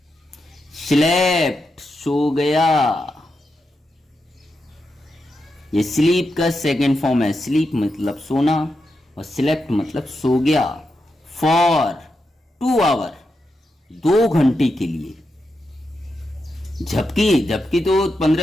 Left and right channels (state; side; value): normal; both; correlation 0.86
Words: स्लेप्ट, सो गया। ये स्लीप का सेकंड फॉर्म है। स्लीप मतलब सोना और स्लेप्ट मतलब सो गया। फॉर 2 आवर, 2 घंटे के लिए। झपकी तो